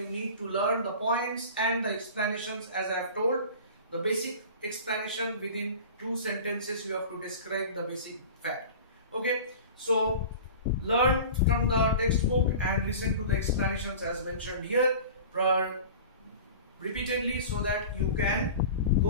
need to learn, the points and the explanations. As I have told, the basic explanation within 2 sentences you have to describe the basic fact. Okay, so learn from the textbook and listen to the explanations as mentioned here repeatedly, so that you can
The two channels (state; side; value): inverted; both; correlation -0.38